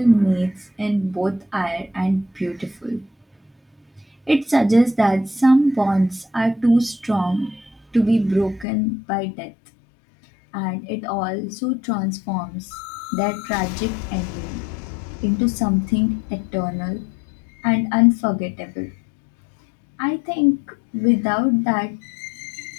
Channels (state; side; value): drops out; right; at 8.7 s